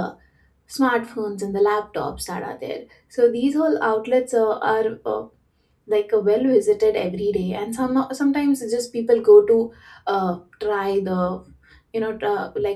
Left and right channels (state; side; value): identical; both; correlation 1.00